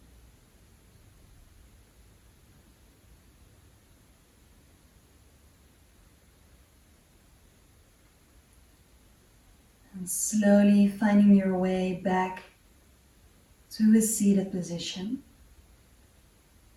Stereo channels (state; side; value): identical; both; correlation 1.00